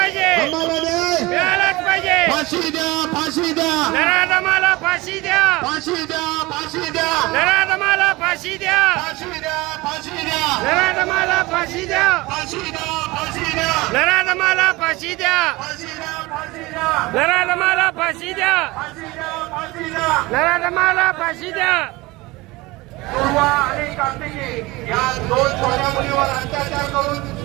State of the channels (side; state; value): left; quieter; 21.5 dB